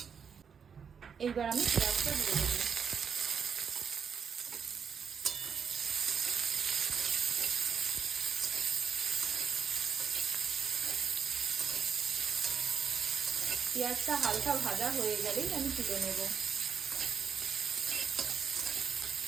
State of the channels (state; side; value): quieter; left; 6.8 dB